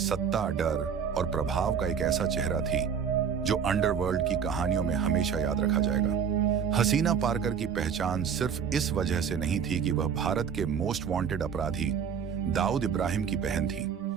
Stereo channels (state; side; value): quieter; left; 7.1 dB